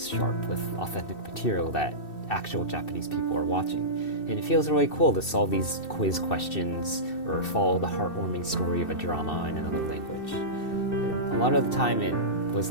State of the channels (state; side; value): late; right; 2.7 ms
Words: sharp with authentic material that actual Japanese people are watching. And it feels really cool to solve these quiz questions or follow the heartwarming story of a drama in another language. A lot of the time it was